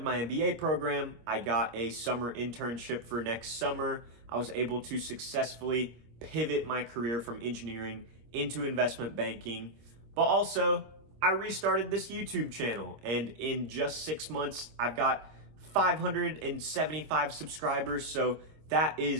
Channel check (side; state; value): left; late; 25 ms